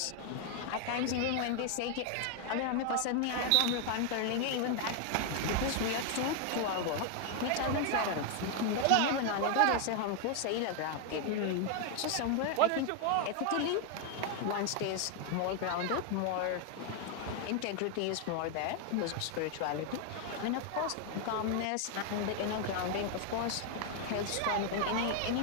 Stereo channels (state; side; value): different; both; correlation 0.01